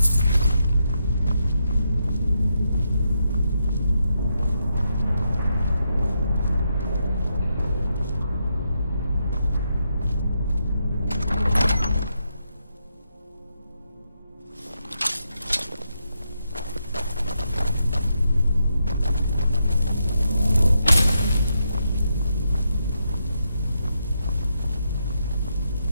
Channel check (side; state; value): both; inverted; correlation -0.82